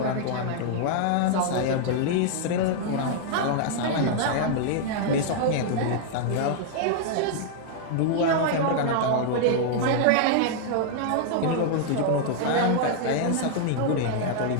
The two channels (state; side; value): different; both; correlation -0.01